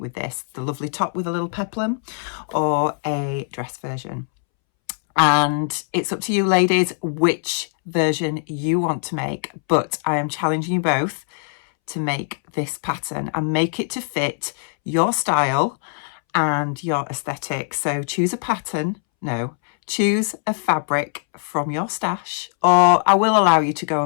with this: the lovely top with a little peplum, or a dress version. And it's up to you ladies which version you want to make, but I am challenging you both to make this pattern and make it to fit your style and your aesthetic. So choose a pattern, choose a fabric from your stash, or I will allow you to go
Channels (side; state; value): right; silent; 64 dB below the other